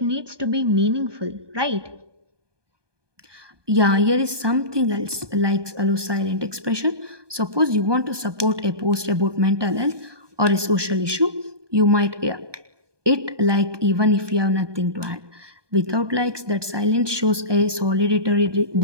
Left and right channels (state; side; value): late; left; 1.2 ms